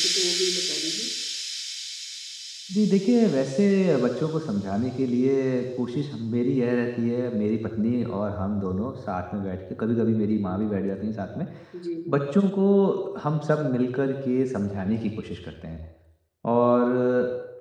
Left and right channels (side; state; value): both; identical; correlation 1.00